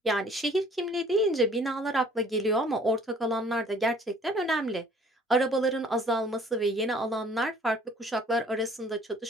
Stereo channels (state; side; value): normal; both; correlation 0.55